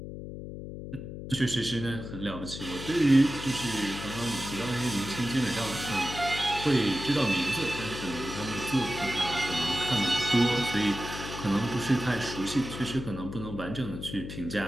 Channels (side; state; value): left; noise; hum, 9 dB below the sound